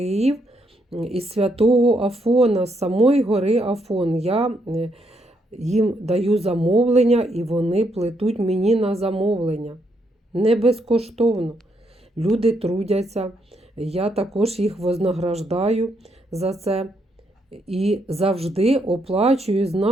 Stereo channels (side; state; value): both; normal; correlation 0.76